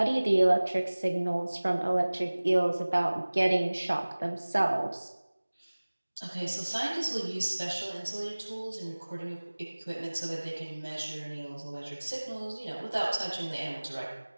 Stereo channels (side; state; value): both; inverted; correlation -1.00